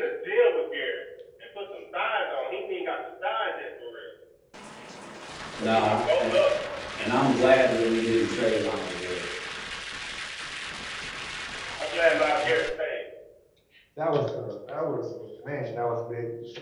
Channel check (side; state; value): both; identical; correlation 1.00